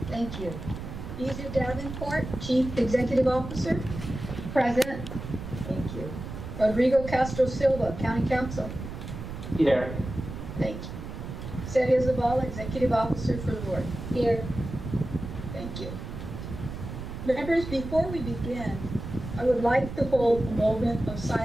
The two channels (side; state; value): right; noise; rumble, 8 dB below the sound